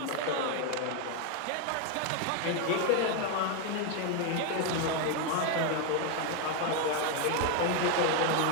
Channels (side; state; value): both; different; correlation 0.01